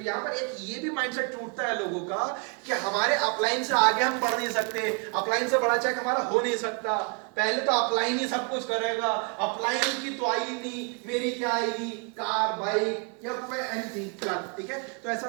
यहाँ पर एक ये भी माइंडसेट टूटता है लोगों का कि हमारे अपलाइन से आगे हम बढ़ नहीं सकते, अपलाइन से बड़ा चेक हमारा हो नहीं सकता, पहले तो अपलाइन ही सब कुछ करेगा, अपलाइन की तो आई नहीं, मेरी क्या आएगी, कार, बाइक या कोई एनीथिंग फिलहाल, ठीक है। तो ऐसा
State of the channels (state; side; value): quieter; left; 37.1 dB